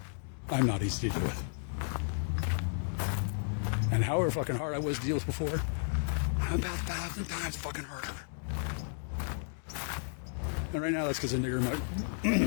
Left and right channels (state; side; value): silent; right; digital silence